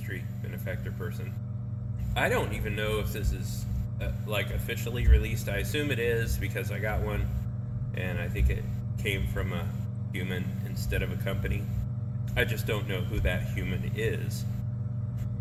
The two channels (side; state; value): both; identical; correlation 1.00